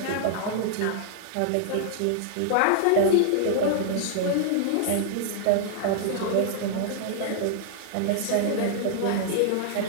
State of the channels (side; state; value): both; different; correlation -0.01